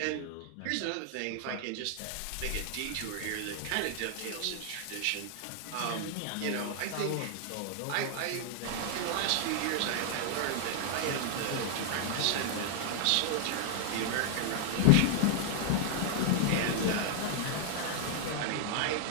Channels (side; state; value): both; different; correlation -0.01